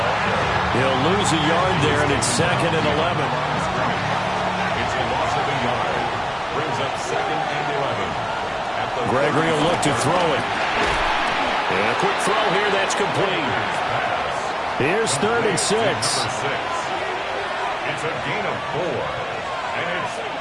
He'll lose a yard there, and it's 2nd and 11. It's a loss of a yard. Brings up 2nd and 11. Gregory will look to throw it. And a quick throw here, that's complete. Here's 3rd and 6. It's a gain of 4. And it's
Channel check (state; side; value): identical; both; correlation 1.00